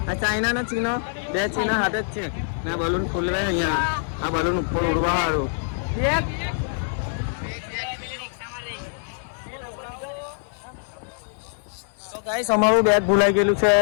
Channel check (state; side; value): silent; right; digital silence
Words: આ ચાઇના ના ચીનો બે ચીના હાથે જ છે ને બલૂન ફૂલવે અહીંયા. આ બલૂન ઉપર ઉડવા વાળું एक તો ગાઈસ અમારું બેગ ભૂલાઈ ગયેલું છે